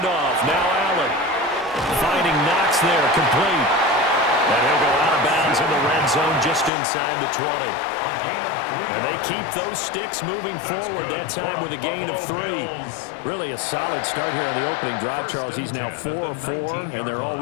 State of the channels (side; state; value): right; drops out; at 6.7 s